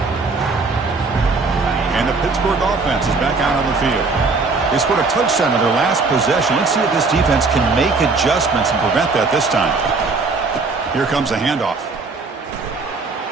And the Pittsburgh offense is back out on the field. They scored a touchdown on their last possession. Let's see if this defense can make adjustments and prevent that this time. Here comes a handoff.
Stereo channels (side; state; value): left; quieter; 4.0 dB